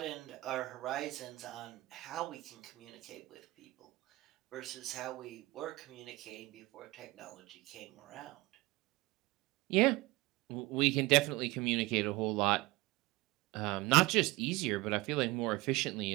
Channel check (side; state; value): left; quieter; 20.4 dB